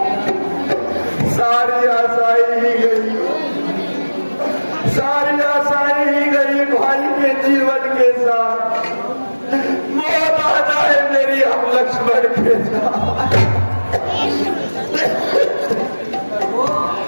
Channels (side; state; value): both; inverted; correlation -1.00